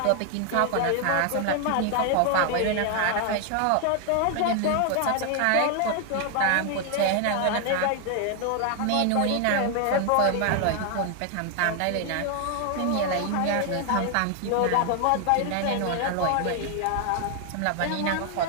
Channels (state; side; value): different; both; correlation 0.00